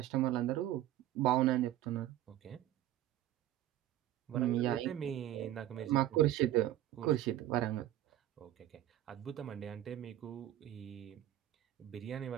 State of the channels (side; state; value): left; quieter; 13.3 dB